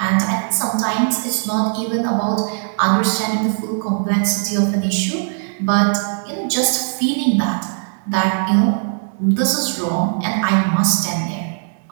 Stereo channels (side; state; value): left; silent; 62 dB below the other